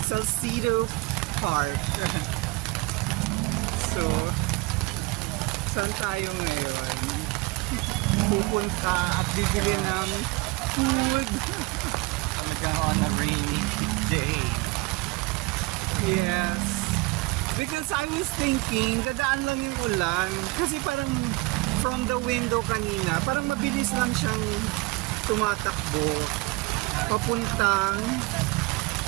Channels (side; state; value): left; quieter; 23.3 dB